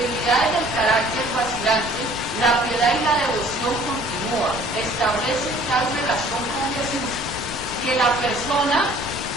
del carácter vacilante, la piedad y la devoción continúa. Establece tal relación con Jesús que la persona,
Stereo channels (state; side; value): noise; left; rumble, 15 dB below the sound